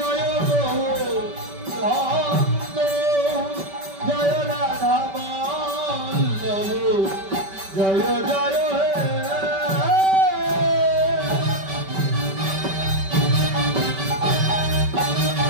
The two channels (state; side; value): late; left; 5.2 ms